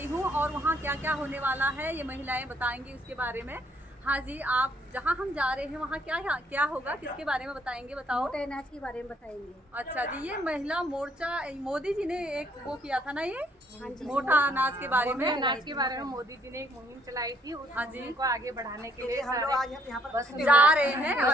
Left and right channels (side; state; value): both; normal; correlation 0.67